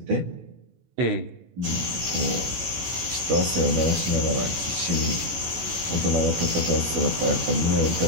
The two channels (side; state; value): left; late; 16 ms